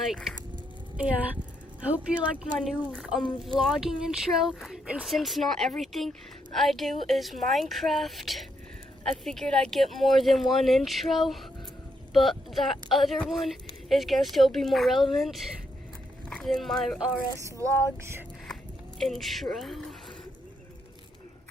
Yeah. I hope you like my new vlogging intro. And since not everything I do is Minecraft, I figured I'd get more than one intro. But that other one is gonna still be more relevant than my RS vlogs intro.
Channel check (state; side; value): normal; both; correlation 0.78